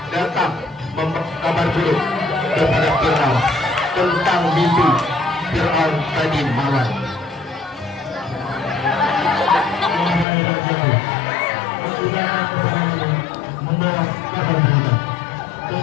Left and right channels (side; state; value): right; drops out; at 10.2 s